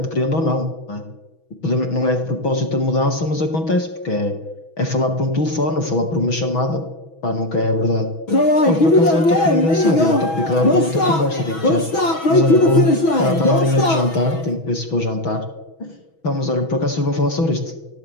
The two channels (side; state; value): right; late; 6.2 ms